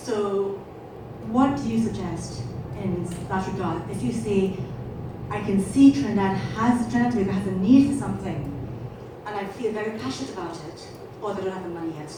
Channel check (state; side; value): identical; both; correlation 1.00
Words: what do you suggest in that regard? If you say, I can see Trinidad has a need for something, and I feel very passionate about it, or they don't have the money yet